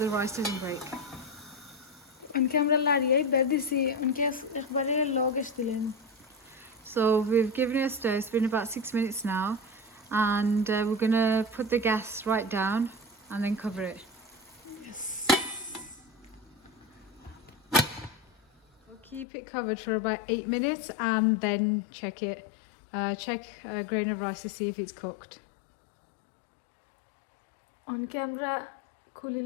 the rice doesn't break. উনকে আমরা লাড়িয়ে বের দিছি উনকে একবারে লো গ্যাস দিলেন So we've given it a stir, it's been about 6 minutes now. And we're gonna put the gas right down and then cover it. We'll keep it covered for about 8 minutes and then check it. Check a grain of rice to see if it's cooked. উনকে আমরা খুলে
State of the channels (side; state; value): right; drops out; at 19.2 s